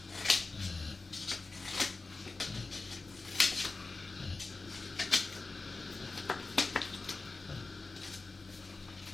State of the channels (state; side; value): quieter; right; 3.7 dB